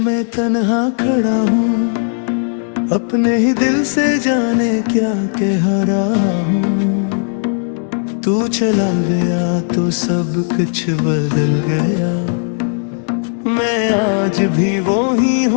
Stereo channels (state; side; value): silent; right; 69 dB below the other